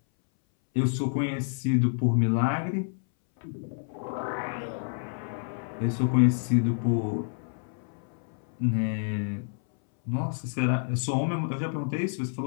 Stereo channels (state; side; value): silent; right; 59 dB below the other